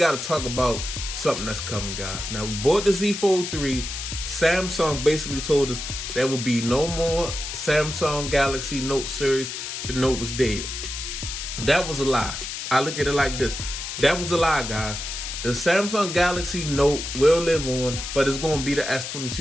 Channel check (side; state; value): left; noise; hiss, 6 dB below the sound